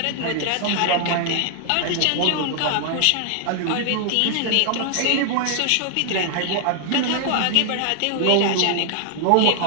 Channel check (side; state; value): both; different; correlation 0.00